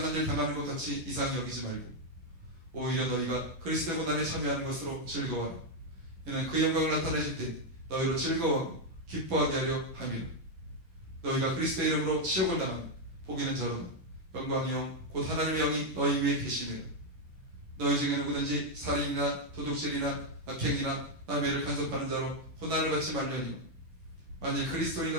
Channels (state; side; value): late; left; 11 ms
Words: 일 당하는 것 같이 이상히 여기지 말고 오히려 너희가 그리스도의 고난에 참여하는 것으로 즐거워하라. 이는 그 영광을 나타내실 때 너희로 즐거워하고 기뻐하게 하려 함이라. 너희가 그리스도의 이름으로 치욕을 당하면 복이는 저로다. 영광의 영 곧 하나님의 영이 너희 위에 계시니라. 너희 중에 누구든지 살인이나 도둑질이나 악행이나 남의 일을 간섭하는 자로 고난을 받지 말려니와 만일